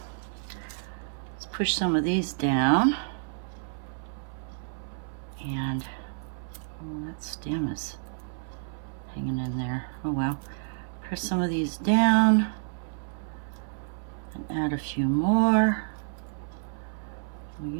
push some of these down, and oh, that stem is hanging in there. Oh well. Press some of these down and add a few more. Well, you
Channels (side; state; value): left; silent; 58 dB below the other